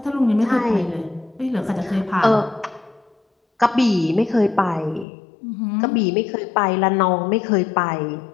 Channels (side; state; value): right; drops out; at 5.1 s